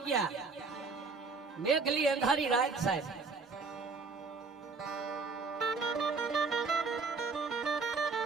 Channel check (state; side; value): quieter; left; 4.5 dB